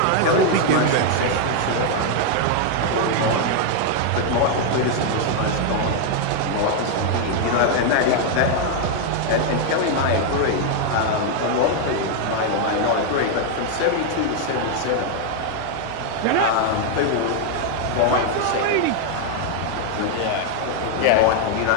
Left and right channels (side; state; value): both; different; correlation 0.01